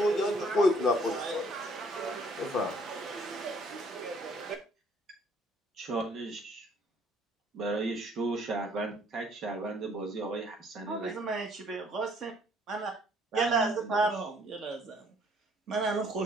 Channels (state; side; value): normal; both; correlation 0.62